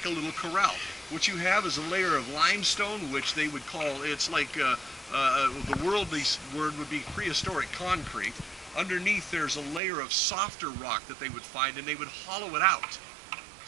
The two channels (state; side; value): drops out; left; at 9.8 s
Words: a little corral. What you have is a layer of limestone, which they would call, it's like, the worldly word would be prehistoric concrete. Underneath there's a layer of softer rock that they would find, and they would hollow it out.